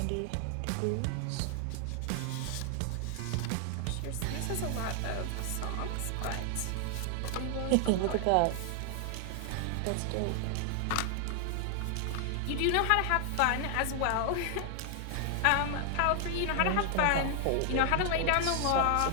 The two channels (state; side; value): different; both; correlation 0.00